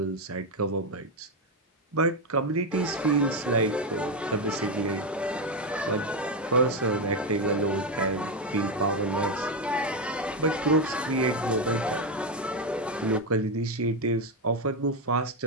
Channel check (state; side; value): normal; both; correlation 0.08